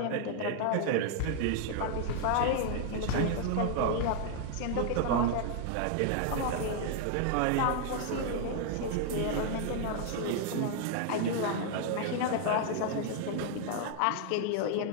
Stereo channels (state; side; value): different; both; correlation 0.00